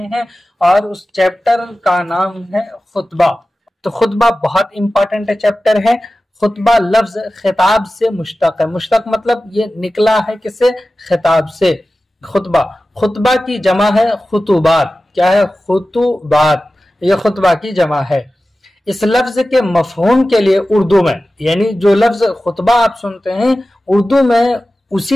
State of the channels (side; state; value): both; normal; correlation 0.95